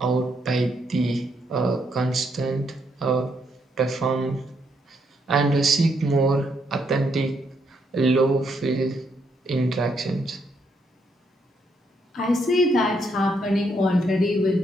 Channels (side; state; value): both; normal; correlation 0.75